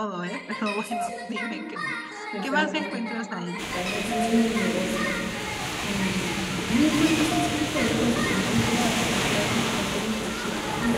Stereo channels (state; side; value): identical; both; correlation 1.00